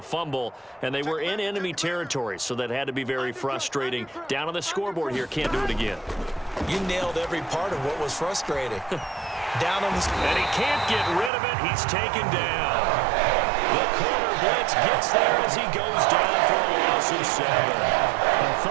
fumble, and they were in enemy territory, so that had to be very frustrating. Down on the scoreboard here, can't do it again. You nailed every part of what was frustrating. Down on the... And he can't get rid of it. He's taken down. The corner blitz gets there as he goes down for a loss of 7. I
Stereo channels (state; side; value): drops out; left; at 11.3 s